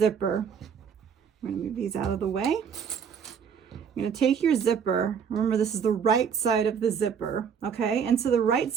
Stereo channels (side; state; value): left; quieter; 7.0 dB